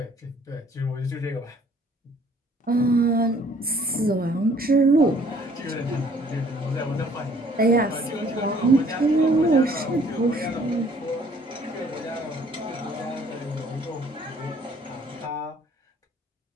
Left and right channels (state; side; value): normal; both; correlation 0.59